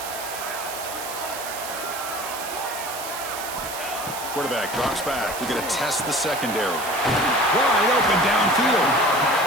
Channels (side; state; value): right; noise; hiss, 9 dB below the sound